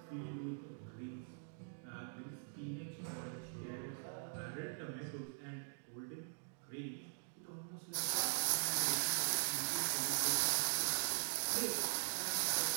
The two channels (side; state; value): left; silent; digital silence